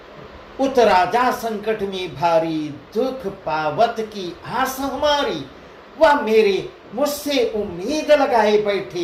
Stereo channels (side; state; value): both; identical; correlation 1.00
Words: उत राजा संकट में भारी, दुख पावत की आस हमारी, वह मेरे मुझसे उम्मीद लगाए बैठे,